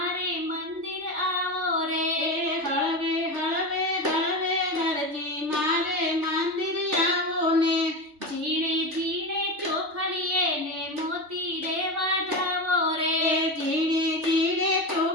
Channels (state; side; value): late; left; 3.3 ms